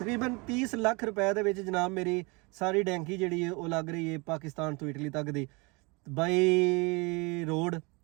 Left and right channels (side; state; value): left; quieter; 28.2 dB